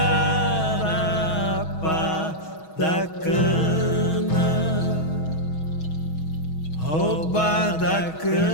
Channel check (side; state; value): right; late; 6.3 ms